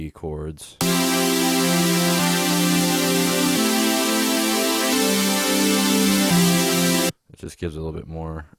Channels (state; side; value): identical; both; correlation 1.00